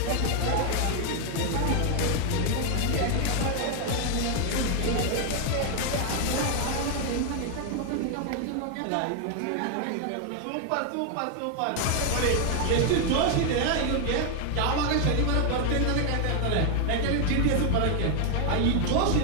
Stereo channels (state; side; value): different; both; correlation 0.00